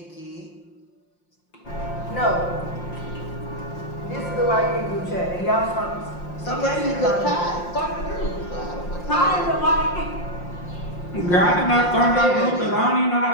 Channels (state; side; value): late; right; 5.7 ms